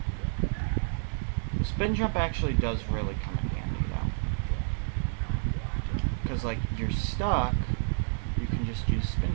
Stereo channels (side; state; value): left; silent; digital silence